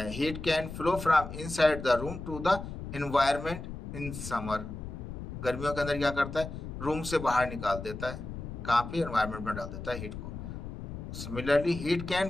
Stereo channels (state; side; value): noise; left; rumble, 9 dB below the sound